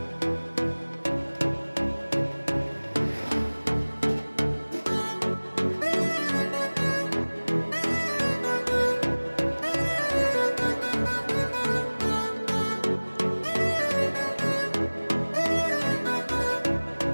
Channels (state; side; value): inverted; both; correlation -1.00